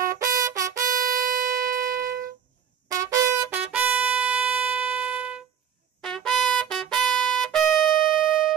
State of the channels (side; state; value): left; quieter; 8.5 dB